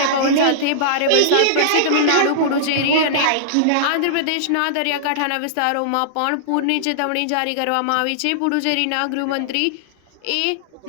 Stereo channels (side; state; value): both; different; correlation -0.02